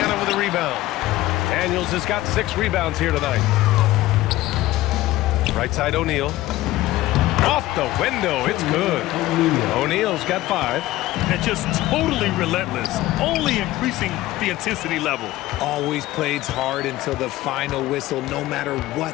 with a rebound. Daniels has got 6 rebounds here tonight. Right side O'Neal. Off the window, it's good. O'Neal's got 5. And just totally relentless, only increasing the intensity level. Always plays hard until the final whistle, no matter what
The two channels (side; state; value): right; quieter; 16.6 dB